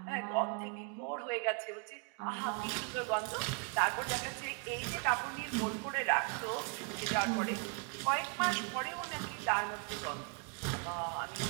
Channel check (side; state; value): left; quieter; 36.3 dB